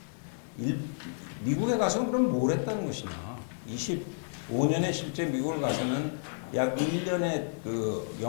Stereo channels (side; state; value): right; silent; digital silence